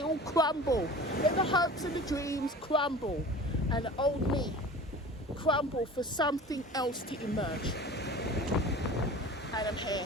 all crumble, let the hopes and the dreams crumble, and the old me crumble for something else to emerge. And I'm here,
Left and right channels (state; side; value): normal; both; correlation 0.39